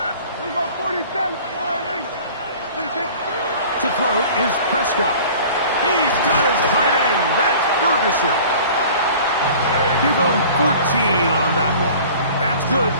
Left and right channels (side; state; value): both; inverted; correlation -0.45